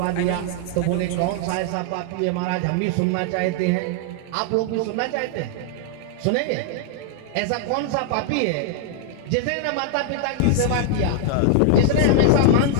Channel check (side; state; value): both; different; correlation 0.00